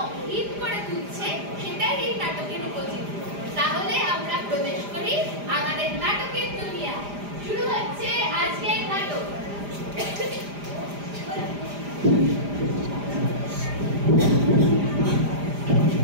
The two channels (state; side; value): late; left; 4.9 ms